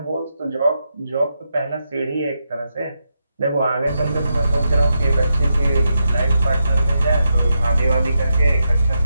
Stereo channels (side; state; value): both; inverted; correlation -0.85